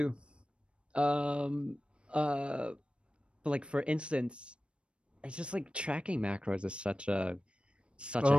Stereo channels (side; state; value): left; late; 0.058 ms